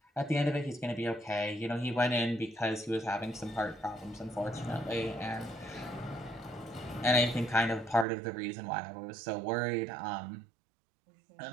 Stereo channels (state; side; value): drops out; left; at 8.1 s